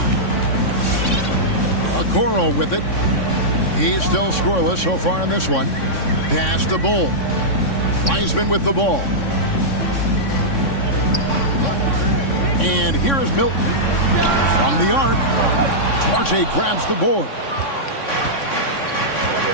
Okoro with it. He's still scoreless so far in this one. Pass to Bull. Wiseman with the ball. And here is Milton from the arc. Duarte grabs the board.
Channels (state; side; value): late; right; 3.6 ms